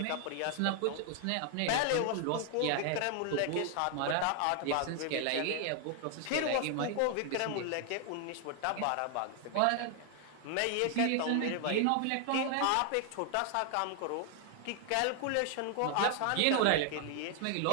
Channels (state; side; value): different; both; correlation 0.00